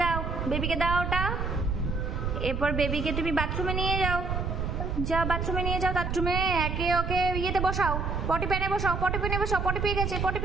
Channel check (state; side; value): noise; right; rumble, 2 dB below the sound